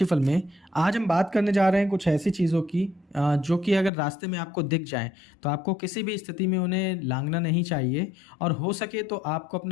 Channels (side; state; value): right; drops out; at 3.9 s